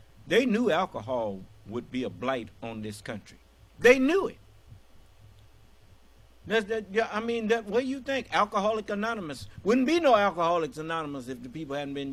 They knew alcohol would be a blight on this country. They knew it. What do you think? Alcoholic Anonymous wouldn't be no Alcoholics Anonymous if the people hadn't been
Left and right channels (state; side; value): identical; both; correlation 1.00